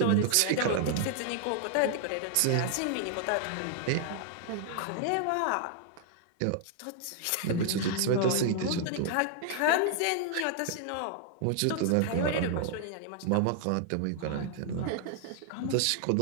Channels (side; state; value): both; different; correlation 0.00